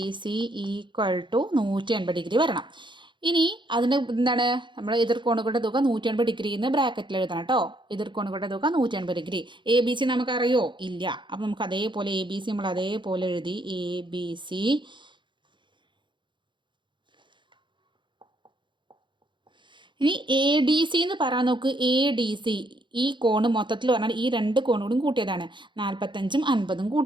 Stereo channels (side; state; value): left; late; 0.23 ms